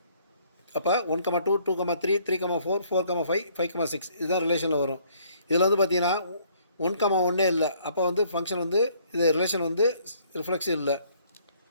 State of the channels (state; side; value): inverted; both; correlation -0.63